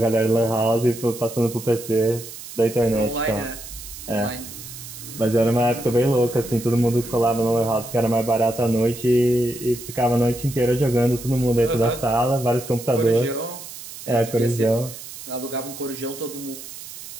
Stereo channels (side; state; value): right; noise; hiss, 13 dB below the sound